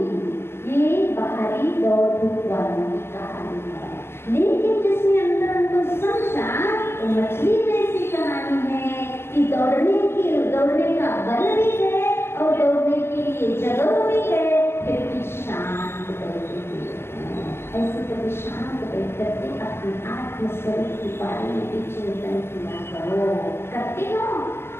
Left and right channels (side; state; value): right; late; 0.12 ms